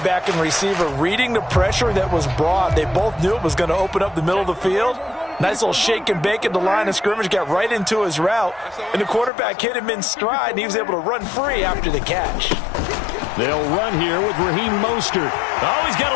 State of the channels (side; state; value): right; drops out; at 9.3 s